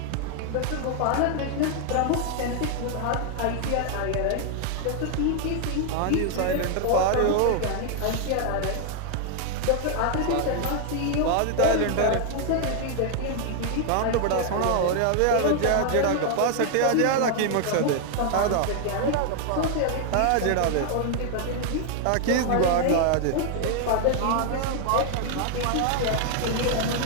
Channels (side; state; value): both; different; correlation 0.00